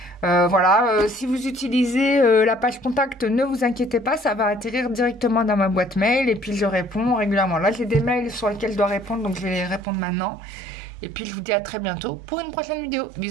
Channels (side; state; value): left; drops out; at 9.8 s